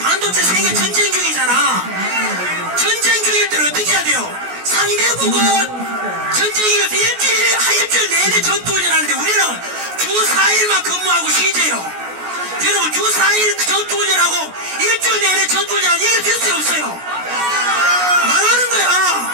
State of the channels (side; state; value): left; late; 16 ms